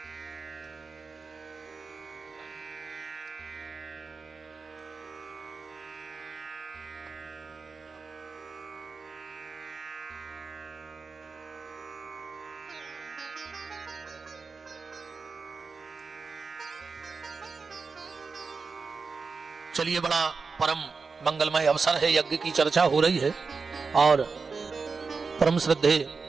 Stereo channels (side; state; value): left; quieter; 4.7 dB